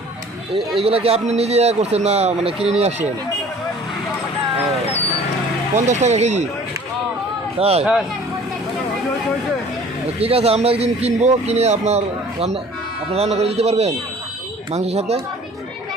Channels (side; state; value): both; normal; correlation 0.49